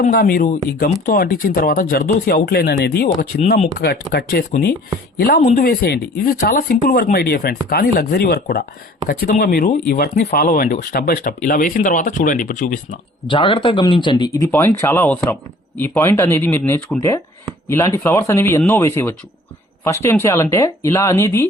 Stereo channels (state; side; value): normal; both; correlation 0.52